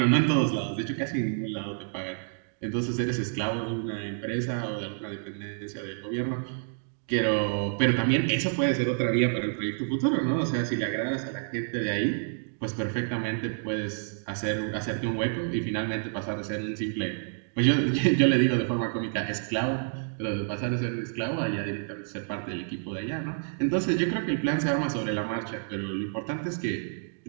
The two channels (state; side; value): silent; left; digital silence